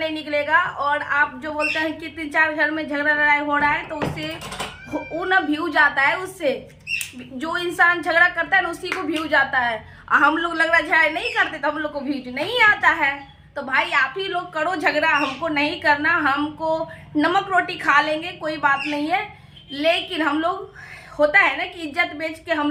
निकलेगा। और आप जो बोलते हैं कि 3-4 घर में झगड़ा लड़ाई हो रहा है, तो उससे वो ना व्यू जाता है। उससे जो इंसान झगड़ा करता है ना, उसी को व्यू जाता है। हम लोग लग रहा है झगड़ा नहीं करते तो हम लोग को व्यू नहीं आता है। तो भाई आप ही लोग करो झगड़ा, हमको नहीं करना। हमको नमक रोटी खा लेंगे, कोई बात नहीं है। लेकिन हम लोग, होता है ना कि इज्जत बेच के हम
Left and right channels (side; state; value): both; identical; correlation 1.00